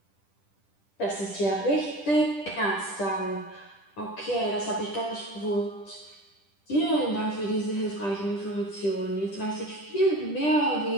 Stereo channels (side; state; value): right; late; 10 ms